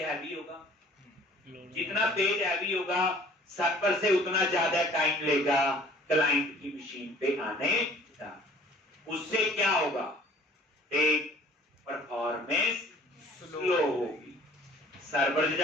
हैवी होगा। जितना पेज हैवी होगा सर्वर से उतना ज्यादा टाइम लेगा क्लाइंट की मशीन पे आने का। उससे क्या होगा? एक परफॉर्मेंस स्लो होगी सर्वर से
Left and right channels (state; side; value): normal; both; correlation 0.53